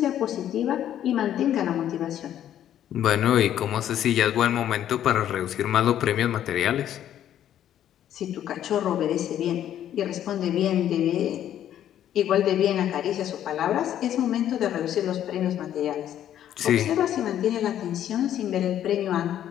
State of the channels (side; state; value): right; quieter; 11.0 dB